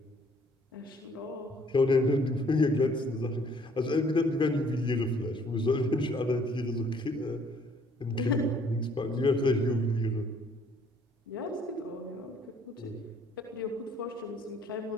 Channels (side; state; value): both; normal; correlation 0.61